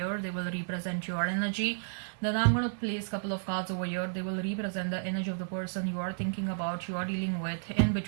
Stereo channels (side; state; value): left; silent; digital silence